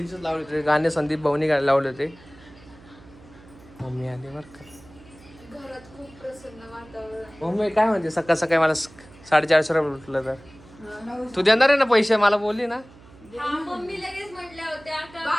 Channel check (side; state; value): right; noise; hum, 23 dB below the sound